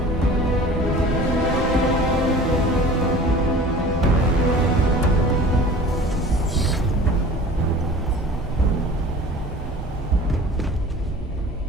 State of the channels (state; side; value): normal; both; correlation 0.43